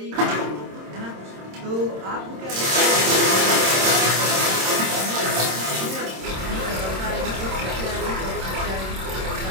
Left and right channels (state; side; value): late; left; 26 ms